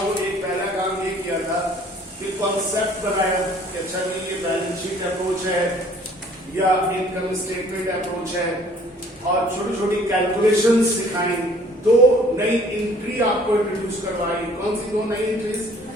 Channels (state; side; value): normal; both; correlation 0.55